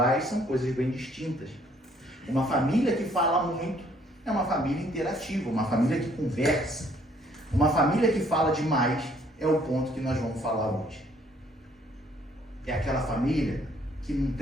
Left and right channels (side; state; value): both; normal; correlation 0.63